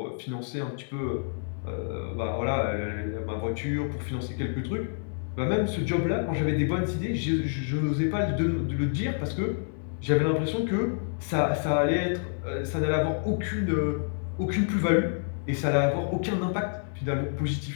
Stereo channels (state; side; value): silent; right; 59 dB below the other